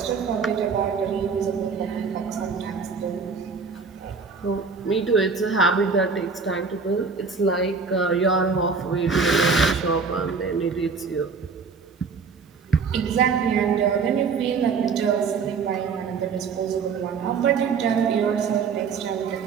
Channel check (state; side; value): quieter; left; 5.2 dB